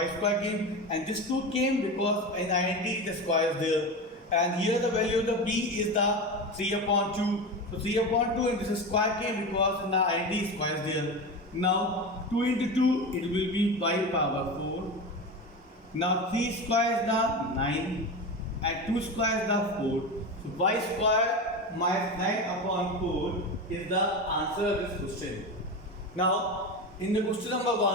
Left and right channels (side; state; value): both; normal; correlation 0.23